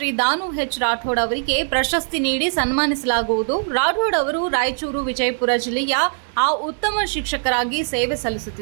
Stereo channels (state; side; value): silent; left; 65 dB below the other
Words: ದಾನು ಎಚ್ ರಾಠೋಡ್ ಅವರಿಗೆ ಪ್ರಶಸ್ತಿ ನೀಡಿ ಸನ್ಮಾನಿಸಲಾಗುವುದು. ರಾಠೋಡ್ ಅವರು ರಾಯಚೂರು ವಿಜಯಪುರ ಜಿಲ್ಲೆಯ ಉತ್ತಮ ಶಿಕ್ಷಕರಾಗಿ ಸೇವೆ